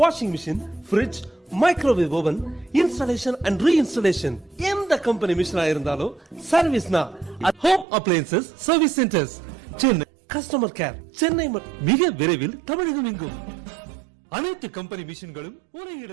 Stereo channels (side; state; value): left; drops out; at 7.9 s